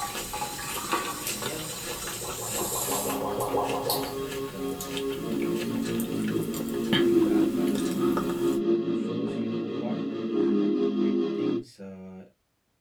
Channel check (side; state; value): both; identical; correlation 1.00